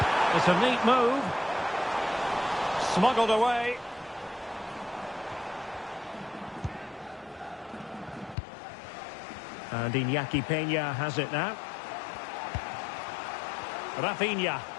It's a neat move. Smuggled away. And Iñaki Peña has it now. Rafinha.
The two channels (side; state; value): right; drops out; at 8.3 s